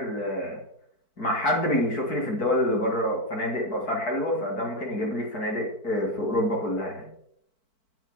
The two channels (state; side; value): late; right; 4.5 ms